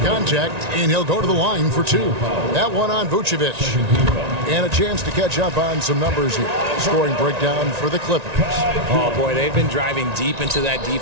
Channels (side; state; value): left; late; 1.9 ms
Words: contact, and he'll go to the line for 2. That one on Vucevic. And a chance to catch up on some numbers here. Scoring breakdown for the Clippers. Oh, boy, they've been driving deep into that